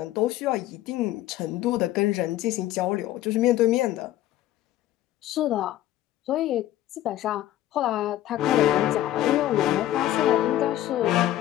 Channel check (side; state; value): right; quieter; 13.8 dB